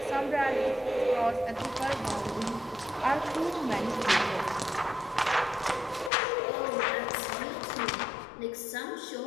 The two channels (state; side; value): drops out; right; at 6.1 s